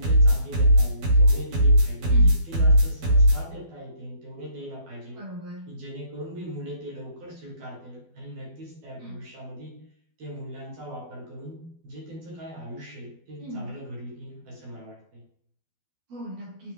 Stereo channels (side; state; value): left; late; 12 ms